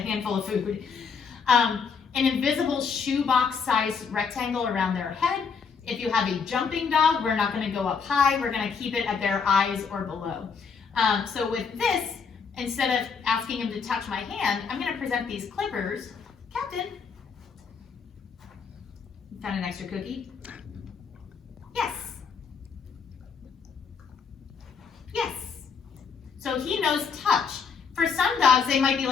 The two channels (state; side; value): quieter; right; 5.8 dB